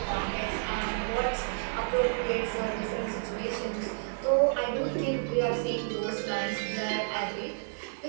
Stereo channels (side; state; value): left; silent; digital silence